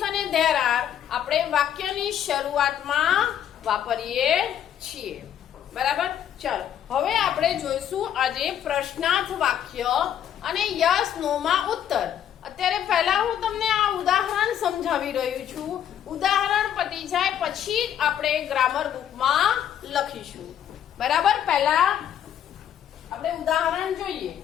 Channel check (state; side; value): quieter; right; 9.9 dB